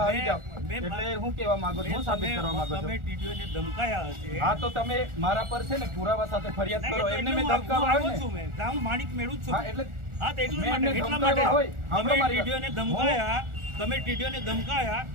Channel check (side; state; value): left; late; 1.4 ms